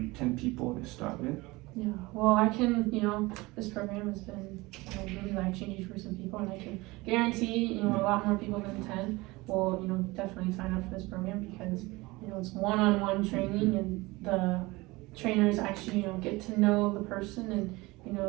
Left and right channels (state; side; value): quieter; left; 22.0 dB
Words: people to start with. Yeah, well, I can, you know, this program has been, you know, really life-changing for some people, and I can guarantee, you know, a lot more people than 10 will, you know, definitely sign up for this program, because, you know, it's one-on-one training, and the trainers actually, you know, get to know the person and, you